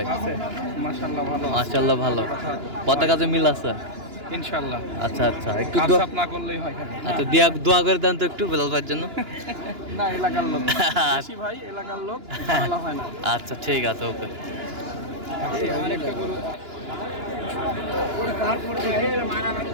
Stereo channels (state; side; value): late; left; 2.9 ms